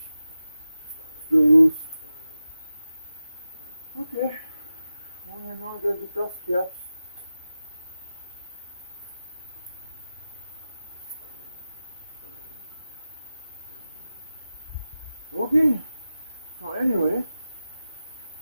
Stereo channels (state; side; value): inverted; both; correlation -0.93